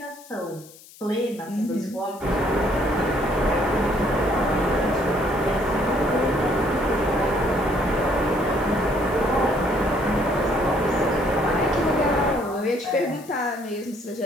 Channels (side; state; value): left; noise; hiss, 21 dB below the sound